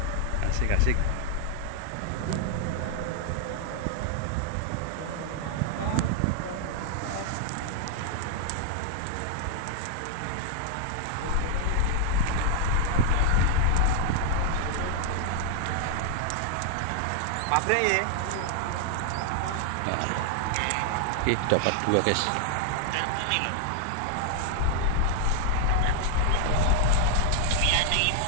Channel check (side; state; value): both; different; correlation 0.00